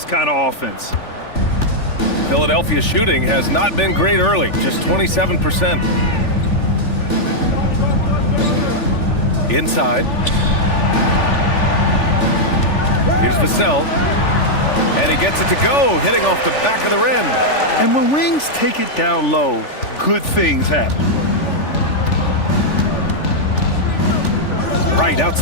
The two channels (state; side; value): late; right; 3.4 ms